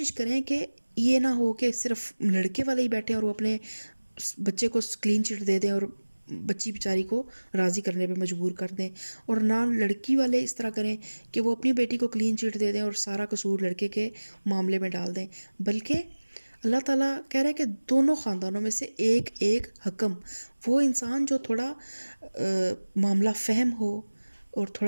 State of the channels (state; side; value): inverted; both; correlation -1.00